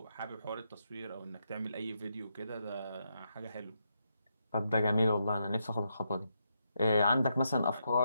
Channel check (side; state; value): both; inverted; correlation -0.82